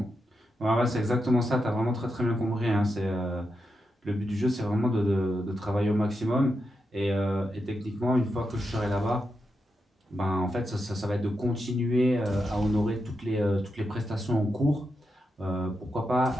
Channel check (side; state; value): both; normal; correlation 0.86